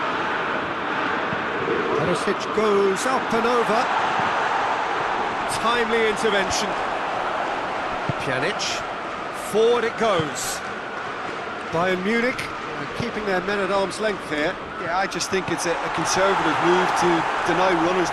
Perisic goes up and over. Timely intervention. Pjanic. Forward it goes. Bayern Munich keeping their men at arm's length here. Yeah, I just think it's a conservative move to deny runners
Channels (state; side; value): identical; both; correlation 1.00